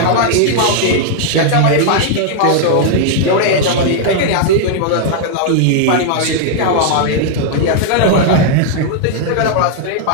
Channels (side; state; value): both; different; correlation -0.01